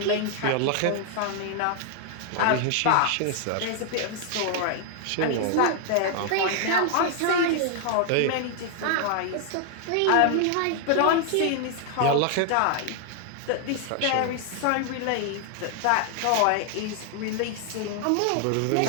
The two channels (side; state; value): both; different; correlation 0.00